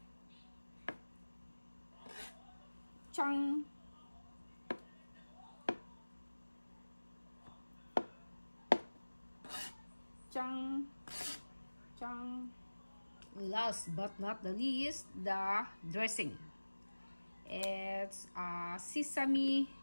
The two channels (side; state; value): both; inverted; correlation -1.00